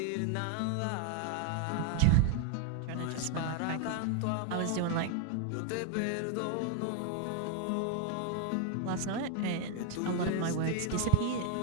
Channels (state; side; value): different; both; correlation 0.00